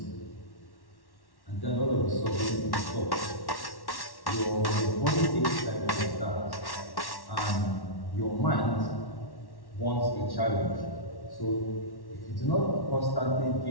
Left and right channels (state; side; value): late; right; 1.1 ms